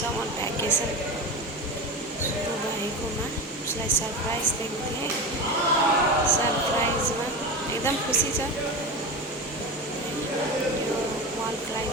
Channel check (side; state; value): both; normal; correlation 0.25